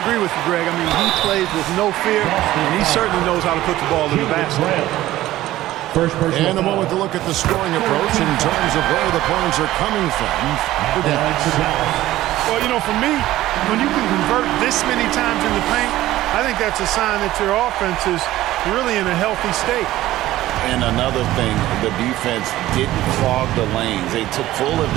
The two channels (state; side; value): quieter; left; 15.4 dB